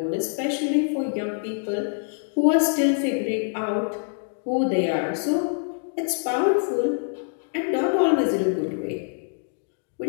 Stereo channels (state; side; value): silent; right; 62 dB below the other